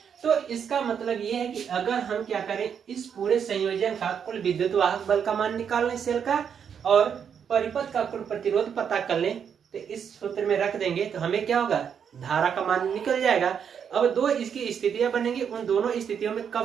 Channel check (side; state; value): left; quieter; 7.6 dB